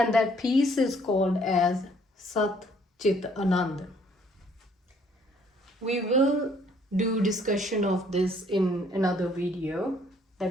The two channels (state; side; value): normal; both; correlation 0.63